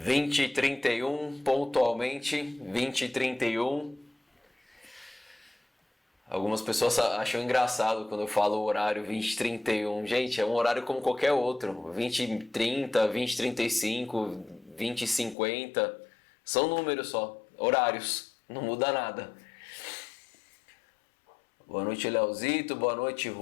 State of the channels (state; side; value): drops out; right; at 15.4 s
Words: pontualmente. 20h31. Algumas pessoas acham engraçado quando eu falo o horário 20h31. Gente, é um horário como qualquer outro. 20h30, 20h35, 20h50. São números só, horários. Não muda nada. Boa noite, Leozito. Boa noite,